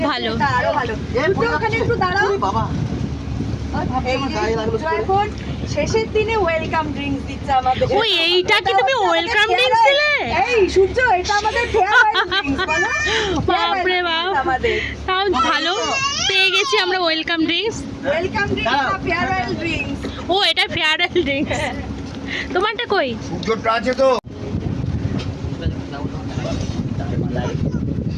ভালো। এটা আরো ভালো। একটু ওখানে একটু দাঁড়াও। এই যে এখন শেষের দিনে ওয়েলকাম ড্রিঙ্কস দিচ্ছে আমাদের। ওই এইটা কি তুমি ওয়েলকাম ড্রিঙ্কস দিলে? এই সূর্য, এটা আমাদের ফেয়ারওয়েল ড্রিঙ্কস বলো। বাপরে বাপ, আমাদের তাও ভালো পেয়ে গেছি আমরা ওয়েলকাম ড্রিঙ্কস। ওয়েলকাম ড্রিঙ্কস না ফেয়ারওয়েল ড্রিঙ্কস। ও এটা ফেয়ারওয়েল ড্রিঙ্কস। তোমারটা কই? সূর্যটা আছে তো।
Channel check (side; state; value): both; identical; correlation 1.00